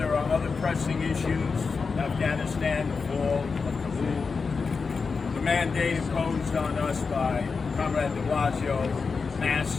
are other pressing issues, Afghanistan, the fall of Kabul, the mandate imposed on us by Comrade de Blasio, masks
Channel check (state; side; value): quieter; right; 4.9 dB